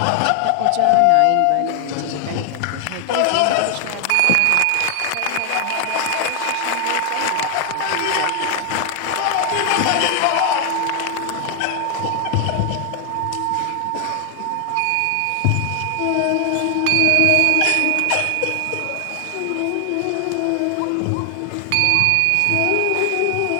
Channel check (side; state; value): both; different; correlation 0.00